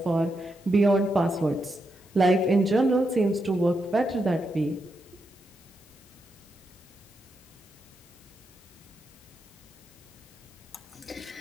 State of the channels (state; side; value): normal; both; correlation 0.84